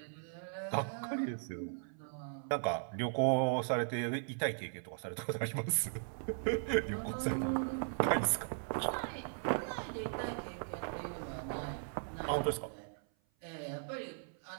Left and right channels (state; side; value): silent; left; 52 dB below the other